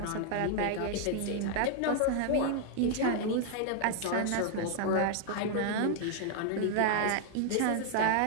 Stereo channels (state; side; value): different; both; correlation 0.00